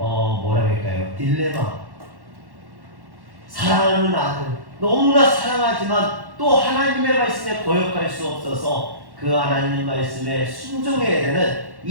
할까요? 딜레마. 사랑하는 아들, 너무나 사랑하지만 또 하나님의 말씀에 거역할 수 없어서 그 하나님 말씀에 순종해야 되는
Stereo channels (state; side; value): late; left; 1.1 ms